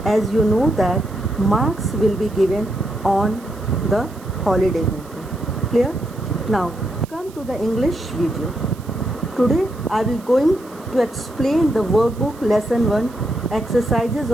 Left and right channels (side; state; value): right; noise; hiss, 24 dB below the sound